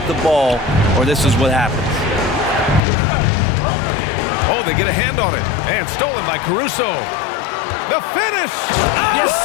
the ball, or this is what happens. Oh, they get a hand on it. And stolen by Caruso. The finish! Yes,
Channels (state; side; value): drops out; right; at 2.8 s